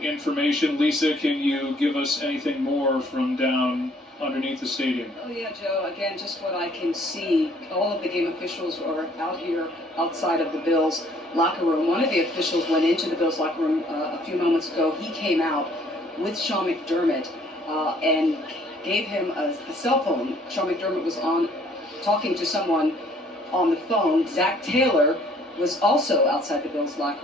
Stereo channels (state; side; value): normal; both; correlation 0.60